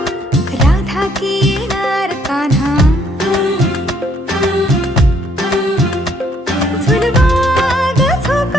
राधा की येणार कान्हा. झुलवा ग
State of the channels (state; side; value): normal; both; correlation 0.66